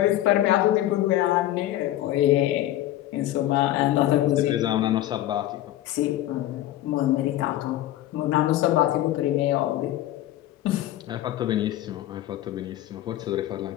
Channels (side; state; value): right; quieter; 14.1 dB